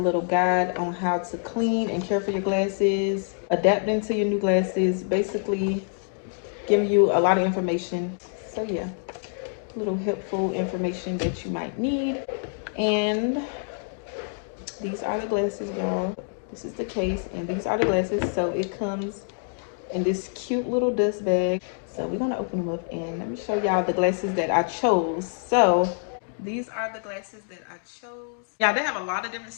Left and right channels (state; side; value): silent; right; 59 dB below the other